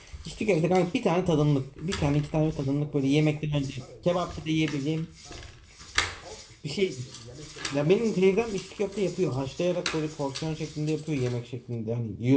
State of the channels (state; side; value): identical; both; correlation 1.00